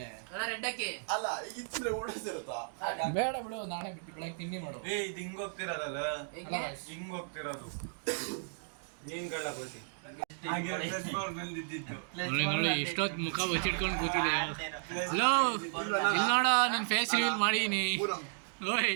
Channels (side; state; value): left; silent; digital silence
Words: ಬೇಡ ಬಿಡು, ನಾಳೆ ಬಿಟ್ಟು ಬೆಳಗ್ಗೆ ತಿಂಡಿ ಮಾಡು. ಎಷ್ಟೊತ್ತು ಮುಖ ಬಚ್ಚಿಟ್ಕೊಂಡು ಕೂತಿದೆ. ಹಲೋ, ಇಲ್ಲಿ ನೋಡ, ನನ್ನ ಫೇಸ್ ರಿವೀಲ್ ಮಾಡೀನಿ. ಓಯ್